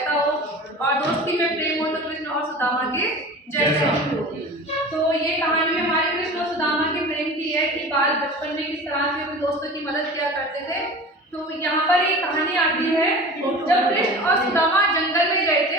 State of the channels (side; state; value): both; normal; correlation 0.36